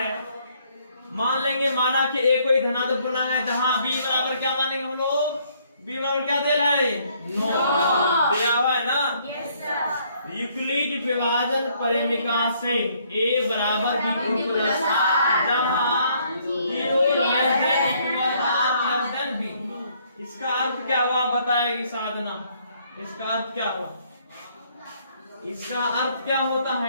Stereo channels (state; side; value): inverted; both; correlation -0.66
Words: मान लेंगे माना कि ए कोई धनात्मक पूर्णांक है जहां b बराबर क्या मानेंगे हम लोग? b बराबर क्या दे रहा है? 9 दिया हुआ है ना। Yes sir. यूक्लिड विभाजन परिमिका से a बराबर b प्लस जहां 0 लेस देन b। इसका अर्थ क्या हुआ बताएगी साधना? इसका अर्थ क्या हुआ? इसका अर्थ क्या होता